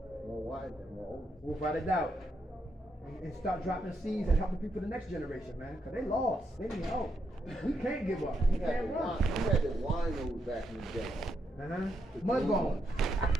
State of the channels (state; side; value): normal; both; correlation 0.80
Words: more wise and more open. Without a doubt. And start dropping seeds and helping people the next generation, man. Cause they lost. They need help. We can't give up. We can't run. We had the winos back in the day. Mudbone.